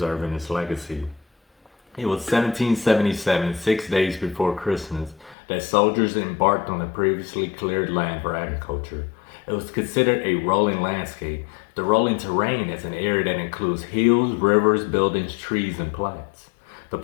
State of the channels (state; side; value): drops out; right; at 5.4 s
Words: its legacy. It was 1777, 6 days before Christmas, that soldiers embarked on the previously cleared land for agriculture. It was considered a rolling landscape. The rolling terrain is an area that includes hills, rivers, buildings, trees, and plants. The